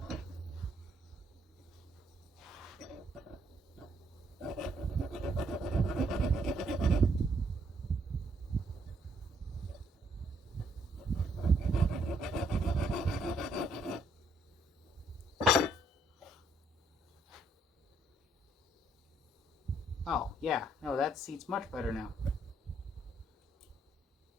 Oh, yeah. No, that seat's much better now.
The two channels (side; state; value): both; normal; correlation 0.69